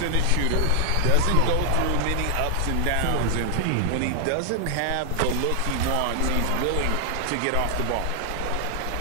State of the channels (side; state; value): both; different; correlation 0.00